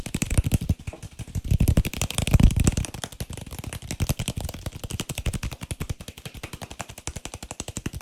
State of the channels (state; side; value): identical; both; correlation 1.00